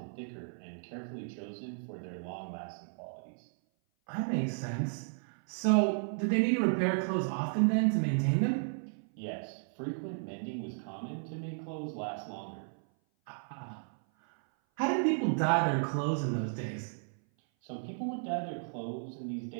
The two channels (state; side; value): silent; left; 55 dB below the other